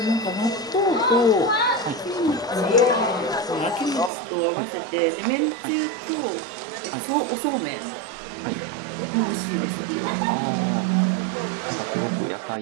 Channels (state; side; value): drops out; left; at 4.1 s